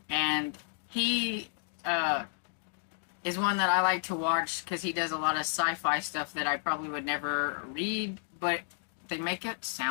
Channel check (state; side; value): silent; right; digital silence